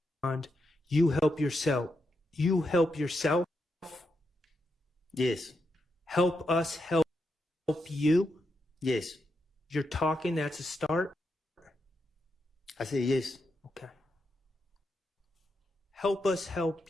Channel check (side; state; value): both; normal; correlation 0.84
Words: you help yourself? You help yourself? Yes. Help us help you? Yes. You're talking, that's a start? I said yes. Okay. Help us help